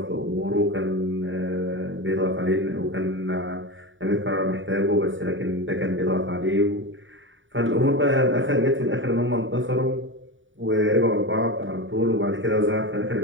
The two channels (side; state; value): left; late; 0.56 ms